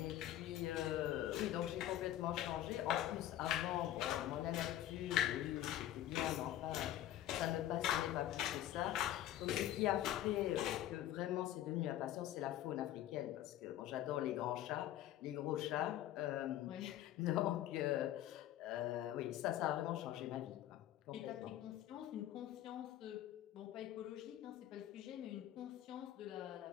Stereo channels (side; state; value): right; quieter; 12.8 dB